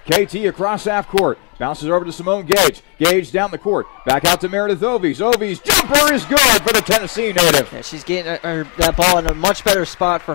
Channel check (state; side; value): quieter; right; 34.4 dB